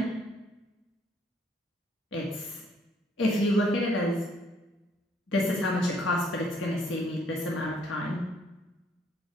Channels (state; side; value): normal; both; correlation 0.65